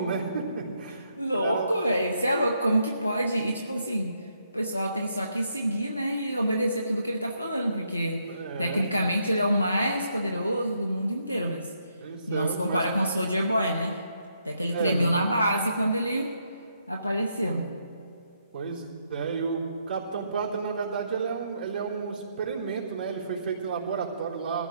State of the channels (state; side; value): inverted; both; correlation -0.76